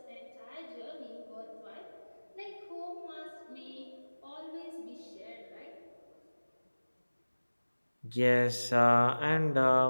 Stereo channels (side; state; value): both; inverted; correlation -1.00